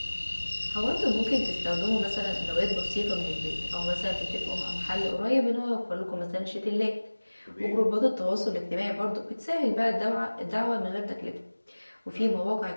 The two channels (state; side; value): inverted; both; correlation -1.00